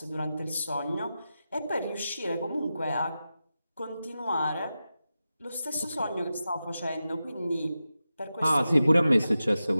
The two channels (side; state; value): both; inverted; correlation -0.92